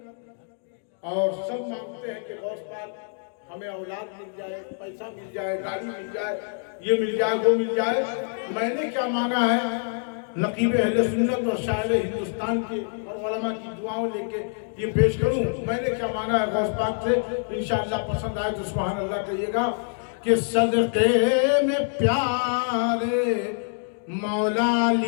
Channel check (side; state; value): right; silent; 61 dB below the other